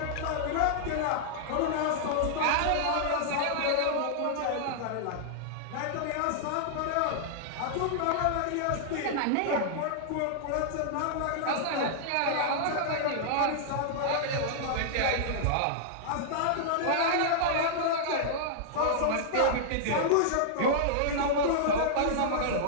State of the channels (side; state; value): both; different; correlation -0.01